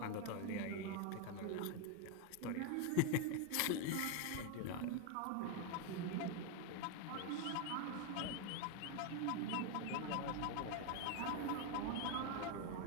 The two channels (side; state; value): both; different; correlation 0.01